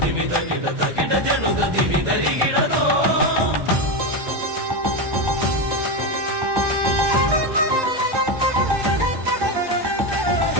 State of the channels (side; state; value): left; late; 1.2 ms